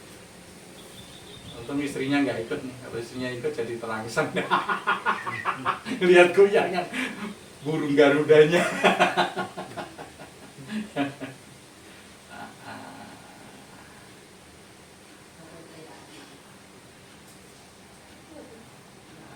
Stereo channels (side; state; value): both; identical; correlation 1.00